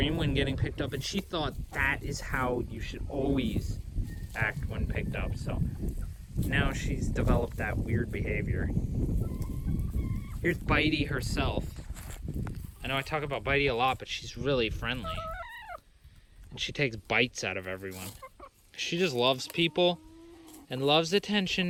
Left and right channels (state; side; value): identical; both; correlation 1.00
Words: when getting picked up, and she thought that is how you should always act when picked up. So now she's developed that weird behavior. Here's Bitey herself. I know I talk about Bitey a lot, but she's really friendly. And she takes bites out of everyone. She just loves people and loves